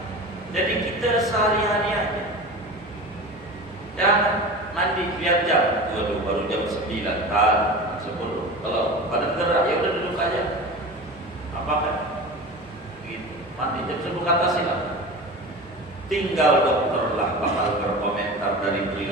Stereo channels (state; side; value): normal; both; correlation 0.32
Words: Jadi kita sehari-hari aja. Jangan mandi lihat jam. Waduh, baru jam 9 kan 10. Kalau pada gerak ya udah duduk aja. Apa kan? Gitu. Mandi jam 10 ke atas silakan. Tinggal dokter lah bakal berkomentar dari